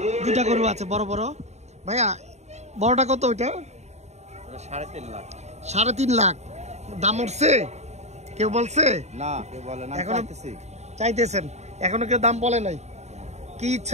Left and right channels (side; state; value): left; late; 0.32 ms